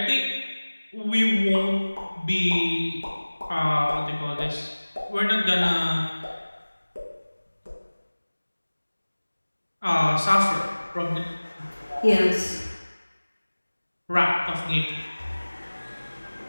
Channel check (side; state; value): both; inverted; correlation -1.00